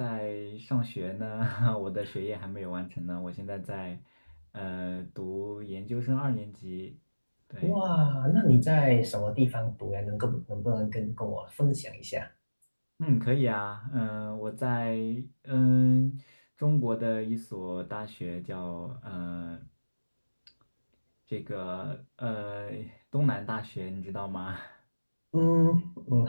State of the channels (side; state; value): both; inverted; correlation -1.00